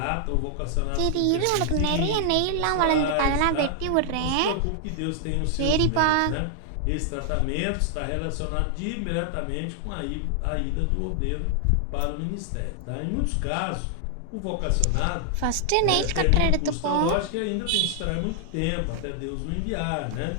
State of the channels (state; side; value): different; both; correlation 0.00